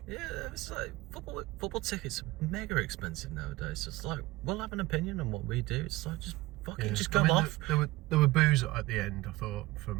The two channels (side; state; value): left; quieter; 19.4 dB